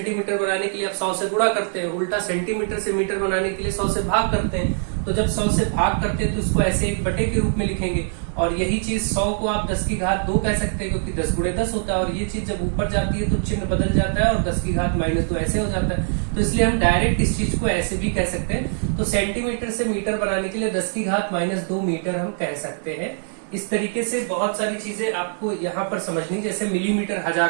बनाने के लिए आप 100 से गुणा करते हैं, उल्टा सेंटीमीटर से मीटर बनाने के लिए 100 से भाग करते हैं। तो जब 100 से भाग करते हैं तो उसको ऐसे 1/, के रूप में लिखेंगे और यही चीज 100 को आप 10 की घात 2 कह सकते हैं, क्योंकि 10 × 10 होता है। और ये चीज जब ऊपर जाती है तो चिन्ह बदल जाता है और 10 की घात -2 ऐसे हो जाता है। तो इसलिए हम डायरेक्ट इस चीज को ऐसे भी कह सकते हैं। तो सेंटीमीटर से मीटर बनाने के लिए 10 की घात -2 मीटर हम कह सकते हैं। इस तरीके से बहुत सारी चीजें आपको यहाँ पर समझनी, जैसे मिलीमीटर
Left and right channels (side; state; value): left; silent; 63 dB below the other